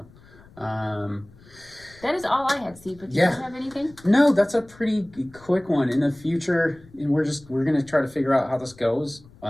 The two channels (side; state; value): left; noise; rumble, 24 dB below the sound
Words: that is all I had, Steve. But do you have anything? No, that's a pretty quick one. In the future, and we're gonna try to figure out how this goes.